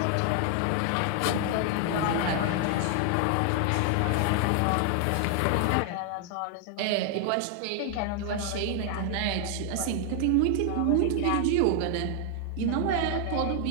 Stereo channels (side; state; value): both; different; correlation 0.00